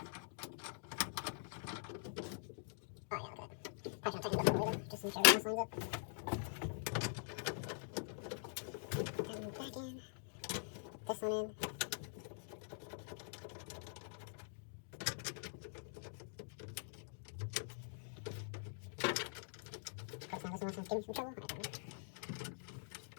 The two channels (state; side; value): silent; right; digital silence